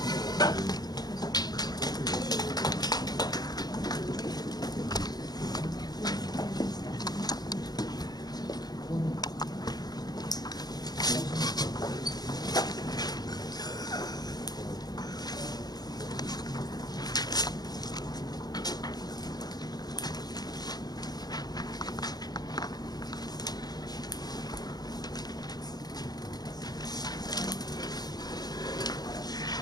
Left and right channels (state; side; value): late; right; 0.19 ms